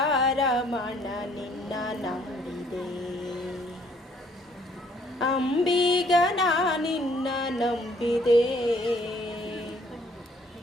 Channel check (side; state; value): both; normal; correlation 0.63